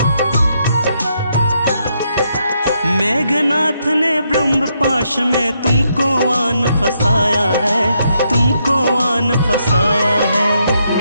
मेघनाथ ने ब्रह्म पाश में तुमको आन फसाया है, तुमको आन फसाया है।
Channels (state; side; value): inverted; both; correlation -0.77